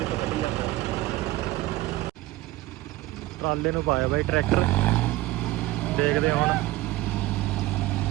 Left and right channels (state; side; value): quieter; left; 17.6 dB